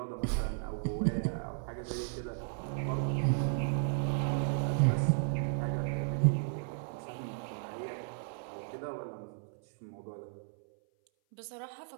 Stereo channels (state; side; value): silent; left; 55 dB below the other